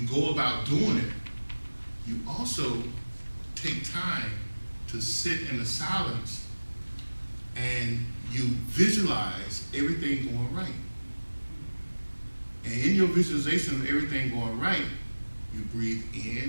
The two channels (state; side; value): inverted; both; correlation -1.00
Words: go about doing it. You also take time to sit in the silence and you visualize everything going right. your visualization of everything going right, you breathe